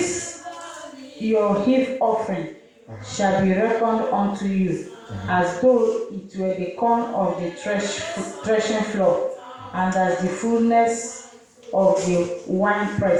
your heave offering shall be reckoned unto you, as though it were the corn of the threshing floor, and as the fullness of the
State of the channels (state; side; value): identical; both; correlation 1.00